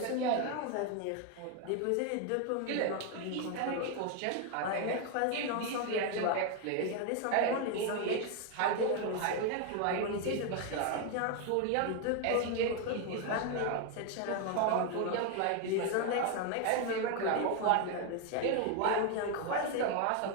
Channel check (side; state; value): both; different; correlation 0.01